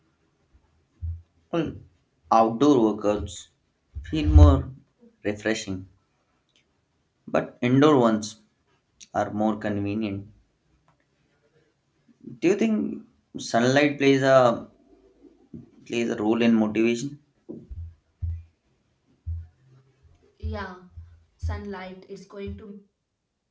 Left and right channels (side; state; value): both; identical; correlation 1.00